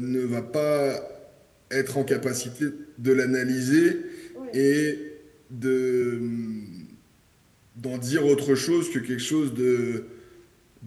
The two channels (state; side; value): identical; both; correlation 1.00